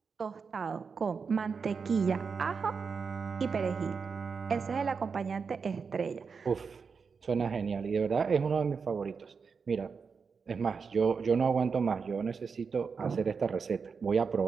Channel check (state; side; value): quieter; left; 5.5 dB